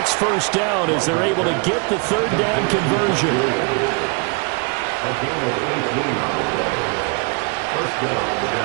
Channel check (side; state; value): left; quieter; 34.1 dB